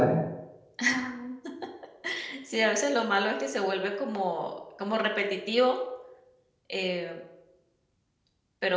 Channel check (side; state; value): both; identical; correlation 1.00